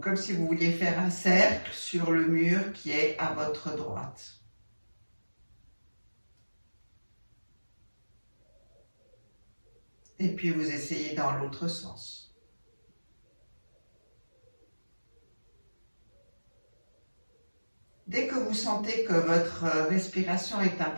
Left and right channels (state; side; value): inverted; both; correlation -1.00